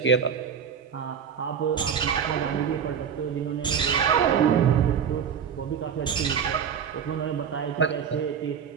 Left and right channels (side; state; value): left; quieter; 7.5 dB